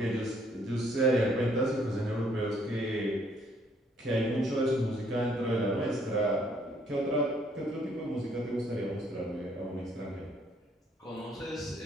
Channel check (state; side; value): normal; both; correlation 0.66